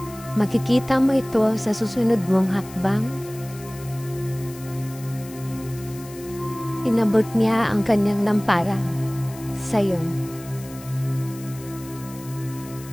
makikita mo ito sa susunod mong hakbang. Inabot niya ang kanyang lampara sa'yo.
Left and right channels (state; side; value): noise; left; hiss, 18 dB below the sound